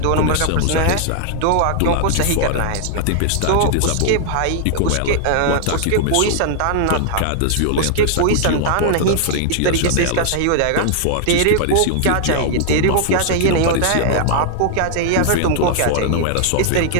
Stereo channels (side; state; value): both; different; correlation 0.00